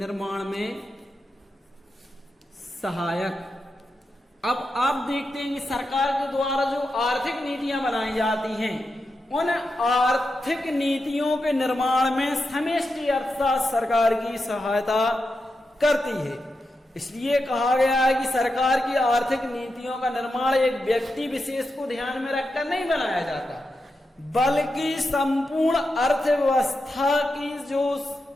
में सहायक। अब आप देखते हैं कि सरकार के द्वारा जो आर्थिक नीतियां बनाई जाती हैं, उन आर्थिक नीतियों के निर्माण में समष्टि अर्थशास्त्र सरकार की सहायता करती है। इसलिए कहा गया है कि सरकार की आर्थिक नीतियों का निर्माण एक व्यक्ति विशेष को ध्यान में रखकर नहीं बनाया जाता, बल्कि संपूर्ण अर्थव्यवस्था की जो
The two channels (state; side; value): normal; both; correlation 0.88